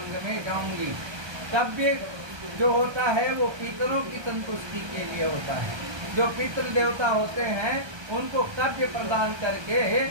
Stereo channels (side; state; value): left; late; 1.3 ms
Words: में जाऊंगी। तब भी जो होता है वो पितरों की संतुष्टि के लिए होता है। जो पितृ देवता होते हैं उनको कर्म प्रदान करके